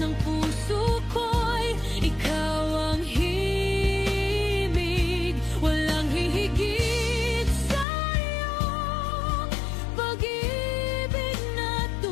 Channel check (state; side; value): drops out; right; at 7.9 s